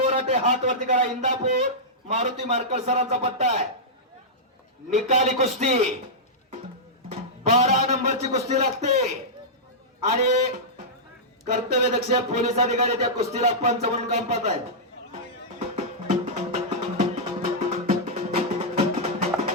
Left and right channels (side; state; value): both; normal; correlation -0.11